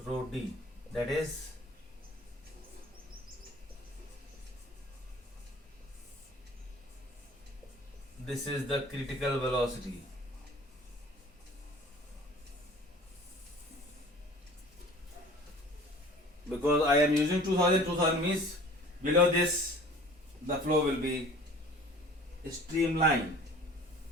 rho D, that is this is the critical velocity. Because I am using 2000 means below this the flow will be streamlined.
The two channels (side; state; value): both; normal; correlation 0.46